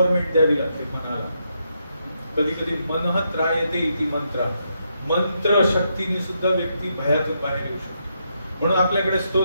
द्यावी लागते मनाला. कधी कधी मनः त्रायते इति मंत्र, मंत्र शक्तीने सुद्धा व्यक्ती भयातून बाहेर येऊ शकतो. म्हणून आपल्याकडे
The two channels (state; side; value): inverted; both; correlation -0.80